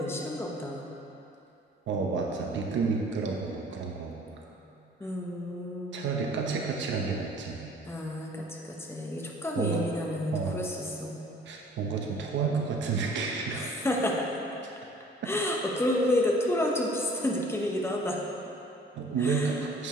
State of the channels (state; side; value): normal; both; correlation 0.52